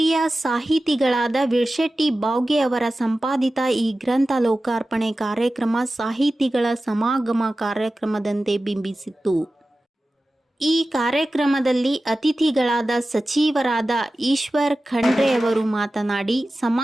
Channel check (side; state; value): both; normal; correlation 0.95